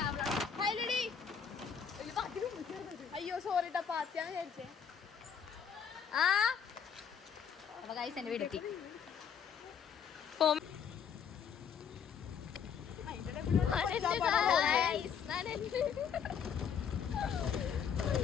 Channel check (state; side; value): quieter; right; 7.3 dB